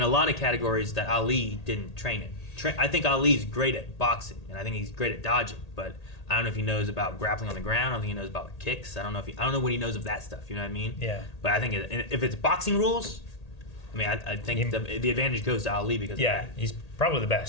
a lot of categories that Ali didn't train in. I think Ali's great at boxing, and I think he's great at dodging, but I don't know if he knows about grappling on the ground. I don't think he knows about kicks. I don't know what he knows of that stuff. You know what I mean? Yeah. But I think if it's boxing rules, I mean, I think the advantage goes to Ali because Yeah, of that. he's probably the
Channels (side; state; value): right; late; 1.8 ms